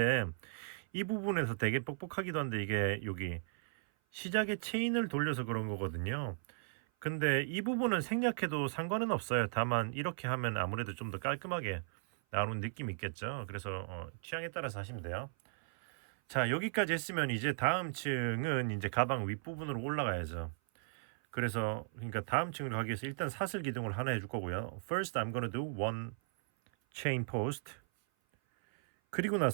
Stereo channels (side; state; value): left; silent; 53 dB below the other